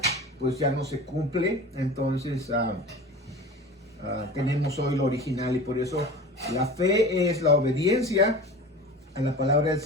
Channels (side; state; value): both; normal; correlation 0.35